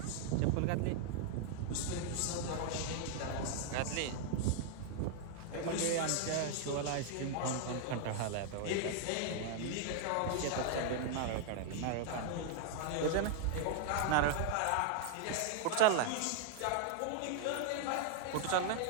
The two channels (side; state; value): both; different; correlation 0.00